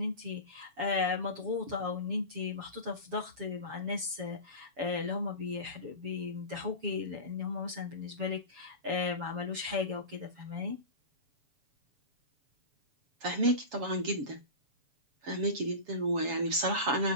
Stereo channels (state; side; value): late; left; 7.1 ms